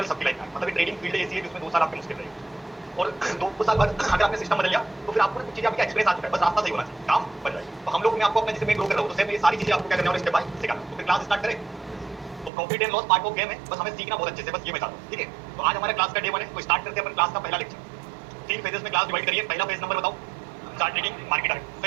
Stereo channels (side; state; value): left; drops out; at 12.5 s